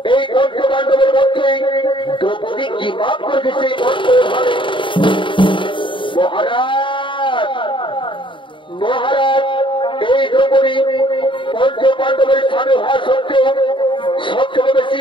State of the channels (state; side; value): late; right; 0.24 ms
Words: এই পঞ্চপাণ্ডবের মধ্যে দ্রৌপদী কি পাপ করেছে মহারাজ। মহারাজ এই দ্রৌপদী পঞ্চপাণ্ডবের স্বামী হওয়া সত্ত্বেও সবচেয়ে বেশি